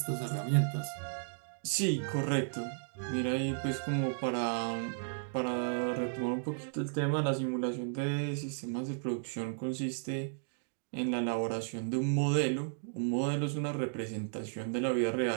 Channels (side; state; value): left; silent; digital silence